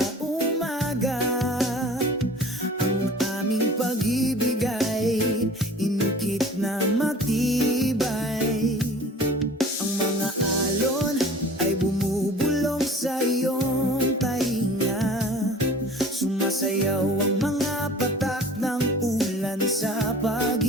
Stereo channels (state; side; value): normal; both; correlation 0.45